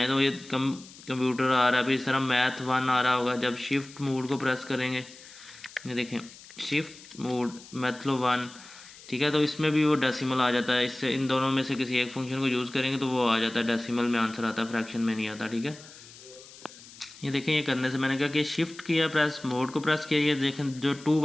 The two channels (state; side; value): noise; left; hiss, 19 dB below the sound